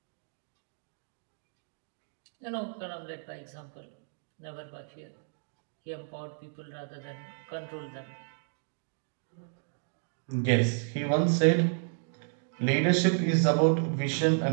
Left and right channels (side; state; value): left; silent; digital silence